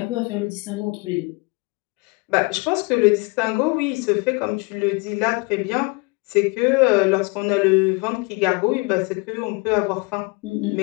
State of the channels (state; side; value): quieter; right; 29.0 dB